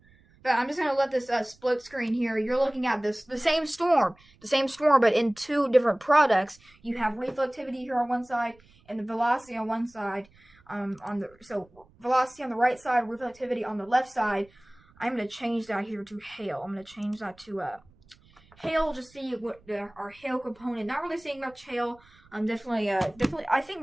But I'm just going to let this split screen here. You're looking at the same storm, but in two different products. You have reflectivity here on one side and the velocity on one side. So velocity on the right side, reflectivity on the left side. I'm going to change that here to hail. I'm going to change that to hail. Just see what our hail component. Not really seeing much hail. Definitely. I think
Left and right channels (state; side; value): noise; right; rumble, 29 dB below the sound